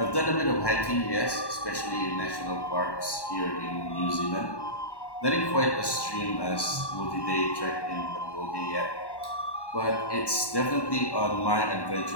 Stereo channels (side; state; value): right; late; 1.1 ms